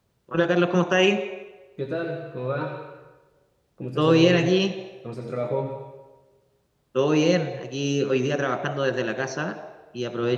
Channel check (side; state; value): both; identical; correlation 1.00